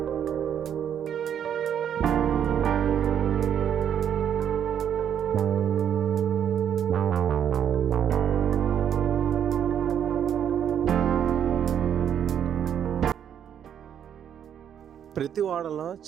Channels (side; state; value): left; quieter; 9.0 dB